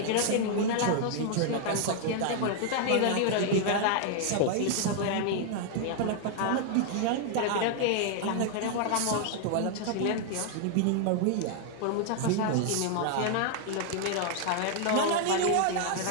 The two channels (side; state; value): both; different; correlation 0.00